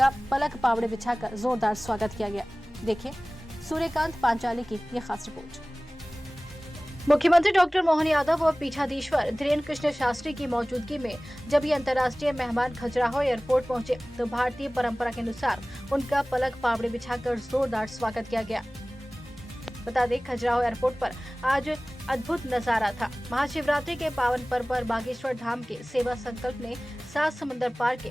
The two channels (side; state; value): both; normal; correlation 0.98